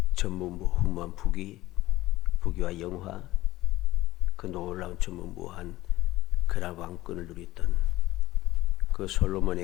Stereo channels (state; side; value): quieter; right; 17.1 dB